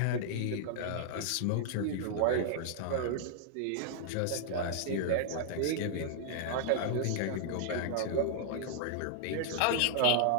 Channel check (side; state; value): both; different; correlation -0.01